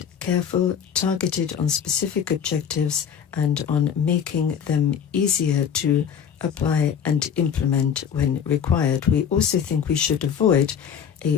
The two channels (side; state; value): right; quieter; 7.9 dB